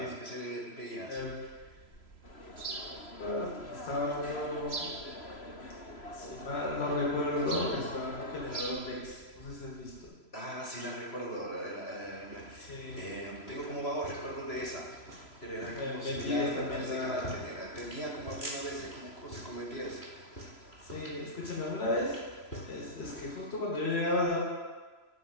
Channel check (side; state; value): right; late; 3.0 ms